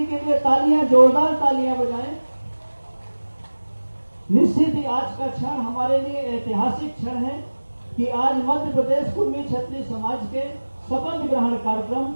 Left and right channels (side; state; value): both; inverted; correlation -1.00